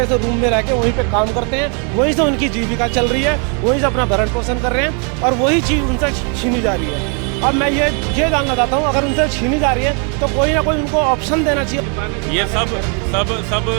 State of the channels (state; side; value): quieter; left; 38.2 dB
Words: से रूम में रह के वहीं पे काम करते हैं, वहीं से उनकी जीविका चल रही है, वहीं से अपना भरण पोषण कर रहे हैं और वही चीज़ उनसे छीनी जा रही है। अब मैं ये जानना चाहता हूँ, अगर उनसे छीनी जा रही है तो कोई ना कोई उनको ऑप्शन देना चाहिए। ये सब